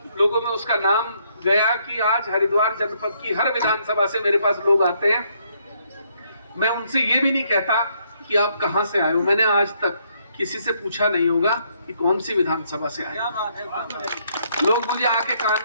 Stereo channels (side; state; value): both; inverted; correlation -0.71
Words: लोगों में उसका नाम गया कि आज हरिद्वार जनपद की हर विधानसभा से मेरे पास लोग आते हैं। मैं उनसे ये भी नहीं कहता कि आप कहां से आए हो। मैंने आज तक किसी से पूछा नहीं होगा कि कौन सी विधानसभा से आए। लोग मुझे आके कान